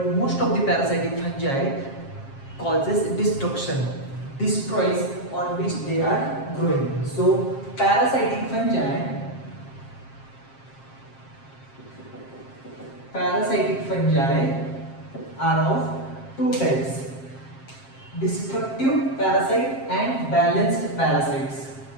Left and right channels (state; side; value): late; right; 7.5 ms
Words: most of the parasitic fungi causes destruction, destroys on which they are growing. So parasitic fungi are of two types: destructive parasite and balanced parasites.